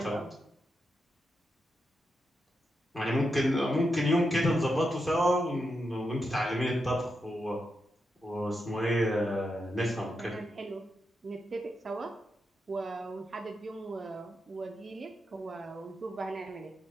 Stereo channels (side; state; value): both; normal; correlation 0.86